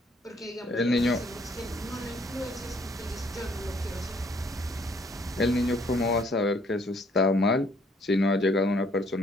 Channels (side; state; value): both; normal; correlation 0.63